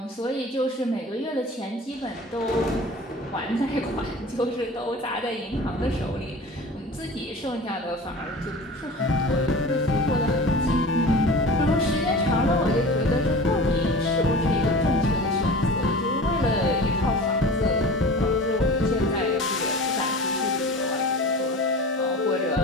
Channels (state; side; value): normal; both; correlation 0.37